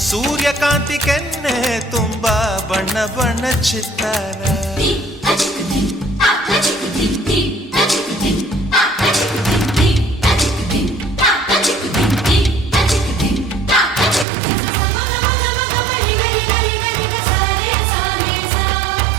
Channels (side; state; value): left; drops out; at 14.2 s